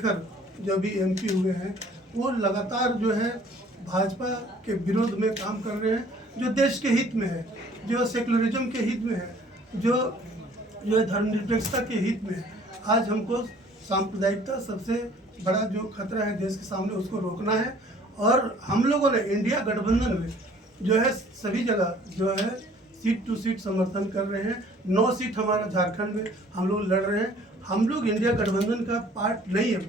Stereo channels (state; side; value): normal; both; correlation 0.55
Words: जो भी एमपी हुए हैं, वो लगातार जो है भाजपा के विरोध में काम कर रहे हैं, जो देश के हित में है, जो सेकुलरिज्म के हित में है, जो धर्मनिरपेक्षता के हित में है। आज हमको सांप्रदायिकता सबसे बड़ा जो खतरा है देश के सामने, उसको रोकना है। और हम लोगों ने इंडिया गठबंधन में जो है सभी जगह जो है सीट टू सीट समर्थन कर रहे हैं। 9 सीट हमारा झारखंड में हम लोग लड़ रहे हैं। हम लोग इंडिया गठबंधन का पार्ट नहीं है